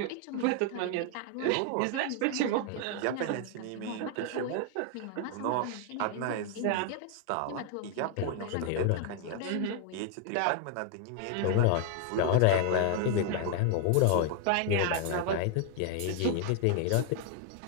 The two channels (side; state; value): both; different; correlation 0.00